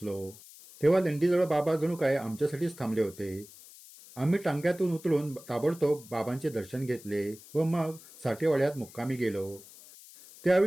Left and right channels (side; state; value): left; noise; hiss, 20 dB below the sound